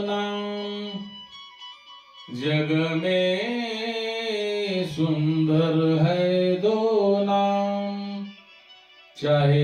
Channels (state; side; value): identical; both; correlation 1.00